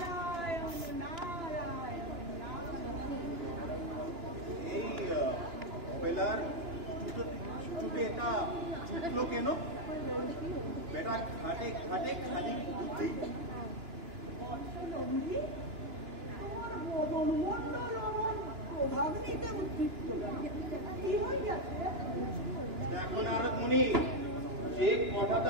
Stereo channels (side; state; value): left; late; 2.9 ms